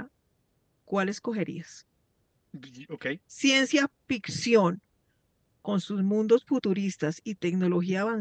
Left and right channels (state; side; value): identical; both; correlation 1.00